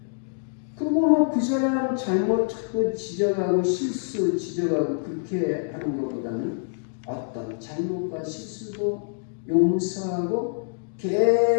그리고 뭐 그 사람 잘못하고 지적하고 실수 지적하고 그렇게 하는 것보다는 어떤 잘못과 실수도 용서하고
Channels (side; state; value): right; silent; digital silence